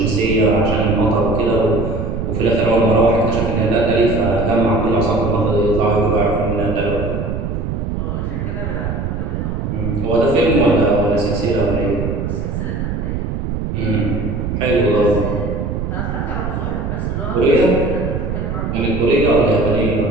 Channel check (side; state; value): right; noise; rumble, 3 dB below the sound